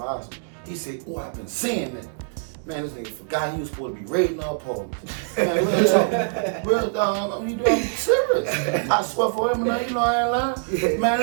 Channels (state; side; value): silent; left; digital silence